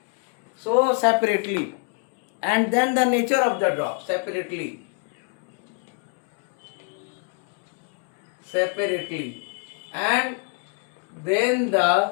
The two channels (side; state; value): right; quieter; 38.4 dB